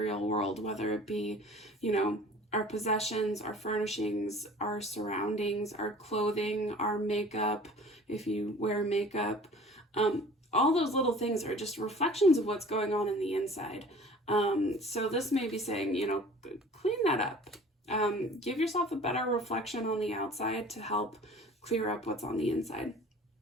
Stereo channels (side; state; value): both; normal; correlation 0.46